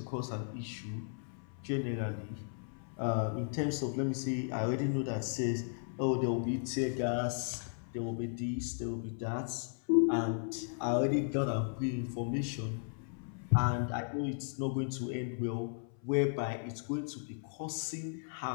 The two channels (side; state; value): right; silent; 54 dB below the other